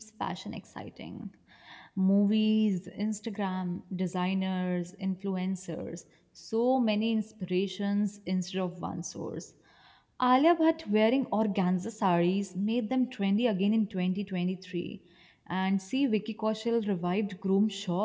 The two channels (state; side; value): identical; both; correlation 1.00